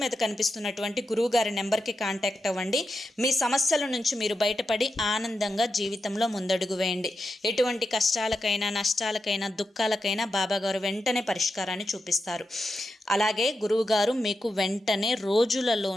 కనిపిస్తున్నటువంటి గురువుగారి నెంబర్కి కాంటాక్ట్ అవ్వండి. మీ సమస్యల నుంచి మీరు బయటపడి ఆనందంగా జీవితంలో ముందడుగు వేయండి. ఎటువంటి కష్టాలకైనా నష్టాలకైనా దుఃఖాలకైనా బాబాగారు వెంటనే పరిష్కారాన్ని చూపిస్తారు. అలాగే గురువుగారు మీకు వెంటనే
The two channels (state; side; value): normal; both; correlation 0.88